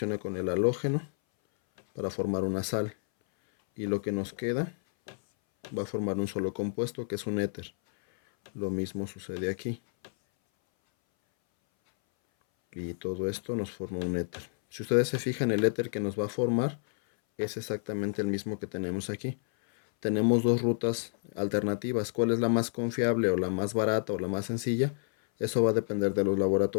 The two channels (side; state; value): right; silent; 58 dB below the other